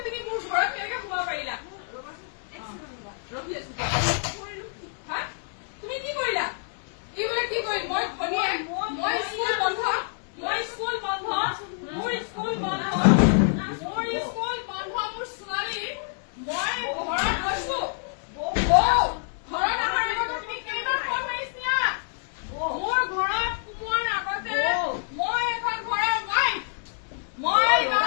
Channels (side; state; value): right; silent; digital silence